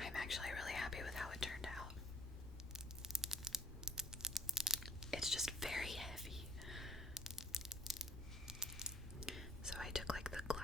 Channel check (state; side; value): normal; both; correlation 0.61